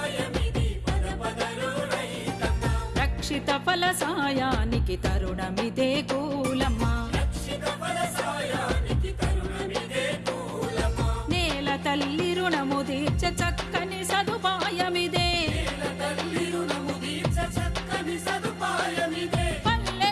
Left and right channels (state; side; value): identical; both; correlation 1.00